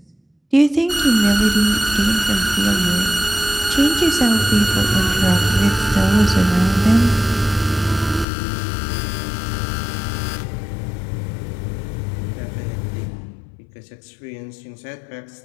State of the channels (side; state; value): right; drops out; at 8.2 s